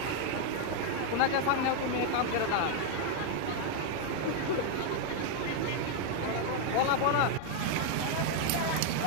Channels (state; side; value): different; both; correlation 0.00